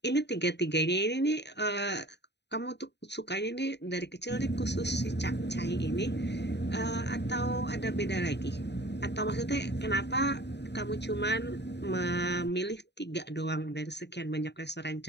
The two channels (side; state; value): right; late; 0.50 ms